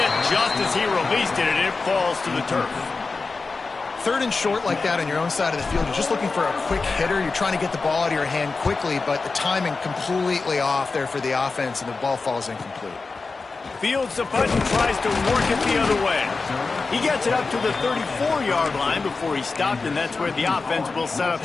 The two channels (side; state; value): right; quieter; 4.1 dB